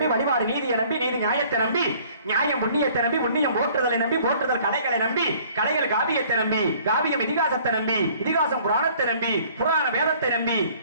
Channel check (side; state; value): both; inverted; correlation -0.55